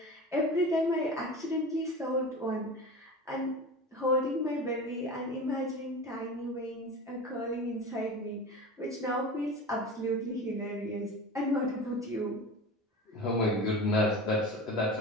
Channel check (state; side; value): normal; both; correlation 0.31